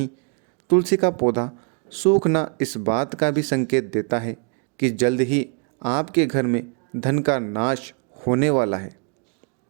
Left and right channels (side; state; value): left; quieter; 38.8 dB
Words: तुलसी का पौधा सूखना इस बात का भी संकेत देता है कि जल्द ही आपके घर में धन का नाश होने वाला है।